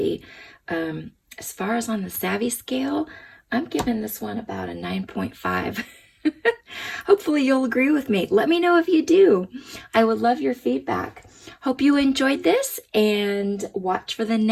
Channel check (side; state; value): both; identical; correlation 1.00